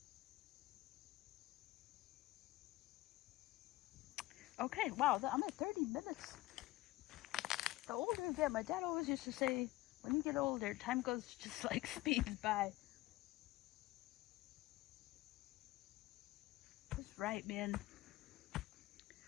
Okay, wow, I'm at 30 minutes. The older I get, my dad always used to say, when you get older, time goes just like speeds by. He's right, man.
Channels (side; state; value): right; quieter; 18.2 dB